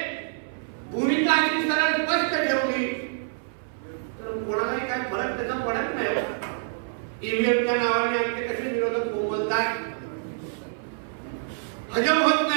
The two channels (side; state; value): left; silent; 61 dB below the other